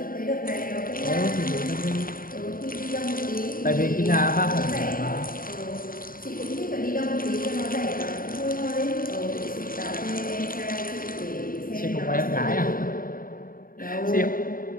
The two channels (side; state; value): right; late; 0.41 ms